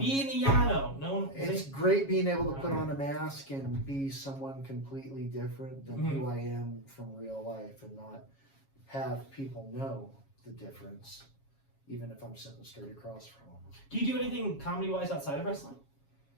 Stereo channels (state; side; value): late; right; 7.3 ms